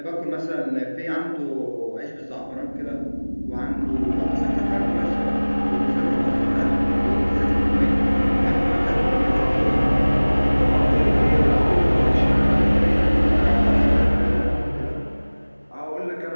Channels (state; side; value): inverted; both; correlation -1.00